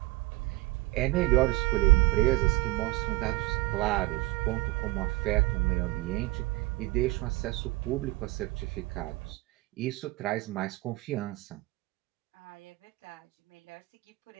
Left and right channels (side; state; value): left; quieter; 21.2 dB